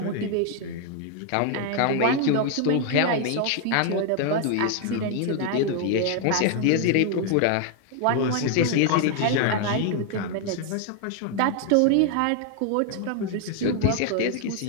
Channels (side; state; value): both; different; correlation 0.00